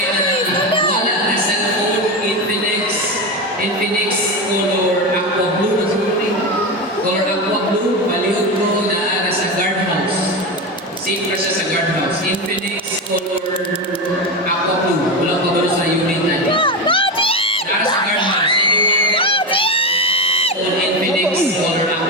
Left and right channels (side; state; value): both; normal; correlation 0.17